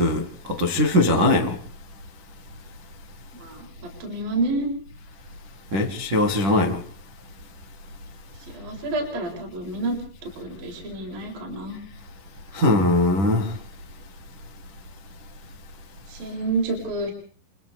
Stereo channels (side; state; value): left; late; 10 ms